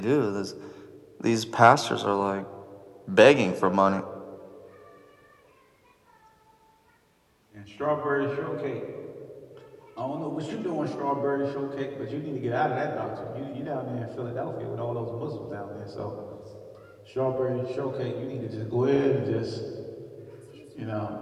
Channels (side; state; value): both; identical; correlation 1.00